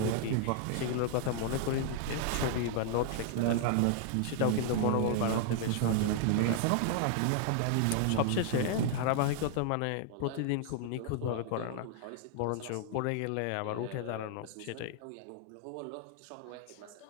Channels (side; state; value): both; different; correlation 0.00